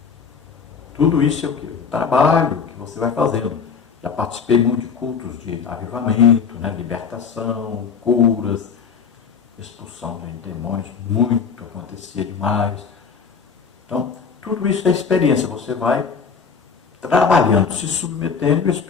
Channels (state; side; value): quieter; right; 5.9 dB